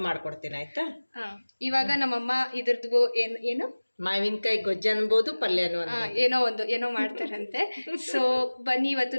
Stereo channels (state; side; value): inverted; both; correlation -1.00